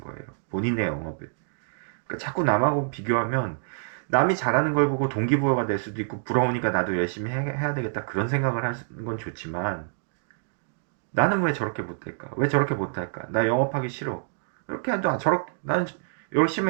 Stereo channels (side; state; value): left; silent; digital silence